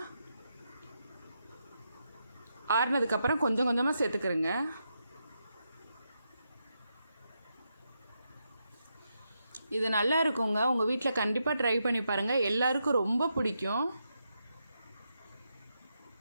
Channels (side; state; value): both; inverted; correlation -0.83